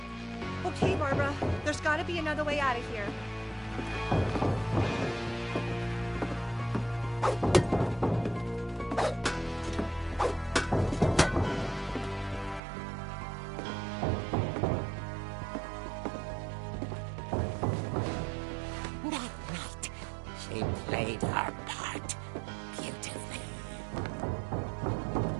Okay, Barbara, there's gotta be another way out of here. That night, she played her part beautifully.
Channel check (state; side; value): drops out; left; at 12.6 s